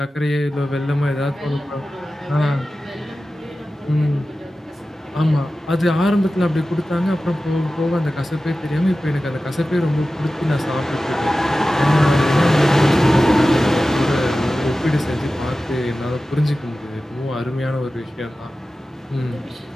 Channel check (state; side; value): normal; both; correlation 0.95